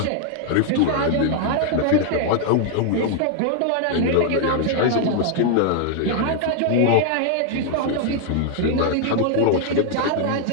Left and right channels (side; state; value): both; different; correlation 0.00